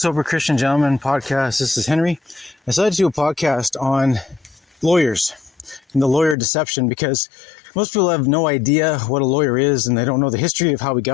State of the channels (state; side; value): drops out; right; at 6.4 s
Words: Christian Gentleman podcast. This is Henry. I decided to do a podcast on lawyers and the lawyer deception because most people have no idea what a lawyer is and they don't know the history of how we